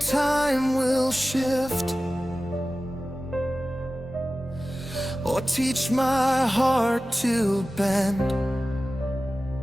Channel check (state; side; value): normal; both; correlation 0.95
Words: will shift, or teach my heart to bend.